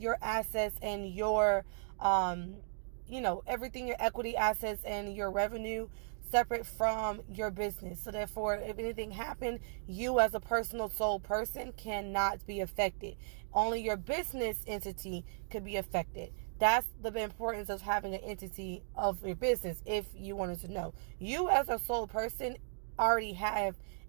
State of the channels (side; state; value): left; silent; digital silence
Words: assets and your, everything, your equity assets and your revenue separate from your business. So therefore, if anything happened, you as a personal sole person cannot be affected. Only your business entity could be affected. That's the importance of having an entity of your business. If you wanted to know, you as a sole person already have